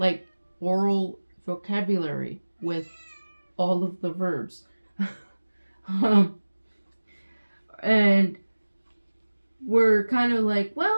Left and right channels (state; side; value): inverted; both; correlation -1.00